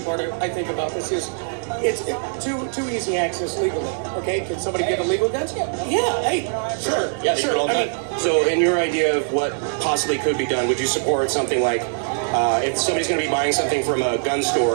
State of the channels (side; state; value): left; silent; digital silence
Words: part I think about this is it's too easy access legally. Okay, can somebody get illegal guns? Yeah, hey, sure. Yeah, sure. all done. So in your idea of what possibly could be done, would you support something like if somebody's going to be buying something from a gun